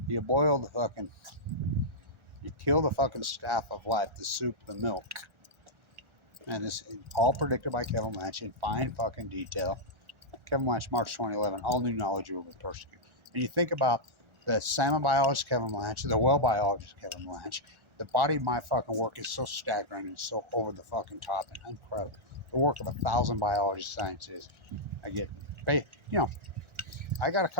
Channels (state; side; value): late; left; 1.4 ms